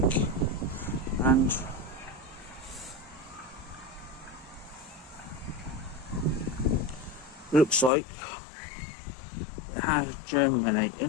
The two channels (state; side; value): drops out; right; at 7.9 s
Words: and looks like it has